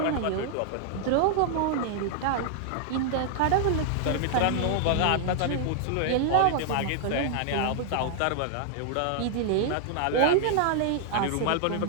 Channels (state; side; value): different; both; correlation 0.00